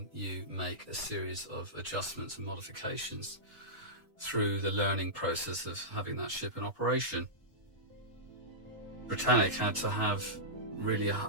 you make a series of adjustments and modifications through the learning process of having that ship in operation. Britannic had to have really a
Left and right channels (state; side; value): normal; both; correlation -0.15